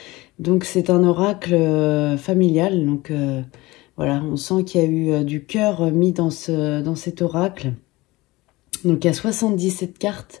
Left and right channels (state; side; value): quieter; right; 20.8 dB